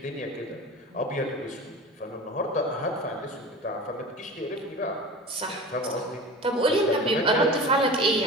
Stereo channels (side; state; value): both; normal; correlation 0.34